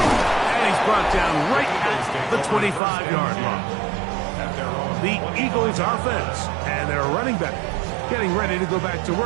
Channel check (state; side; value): drops out; left; at 2.8 s